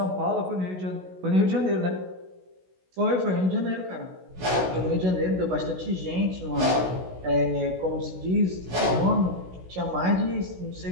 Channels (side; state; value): left; late; 16 ms